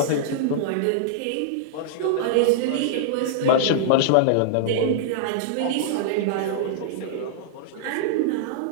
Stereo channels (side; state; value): both; different; correlation -0.02